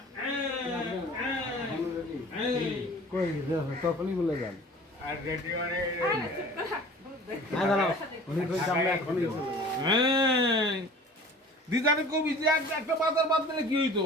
কই তখনই বলে যান আর রেডি মানে না দাঁড়াও উনি কই আমরা এখনই চলে যাবো দিদারে কবি যে একটা বাজার বাদ দিলে কি হইতো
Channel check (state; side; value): normal; both; correlation 0.44